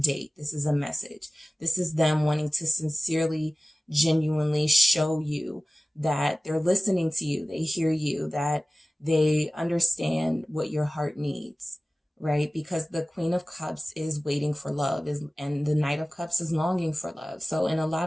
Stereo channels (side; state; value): both; normal; correlation 0.97